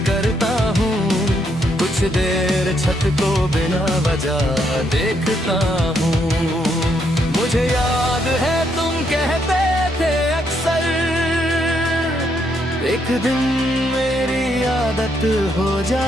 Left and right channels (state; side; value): normal; both; correlation 0.75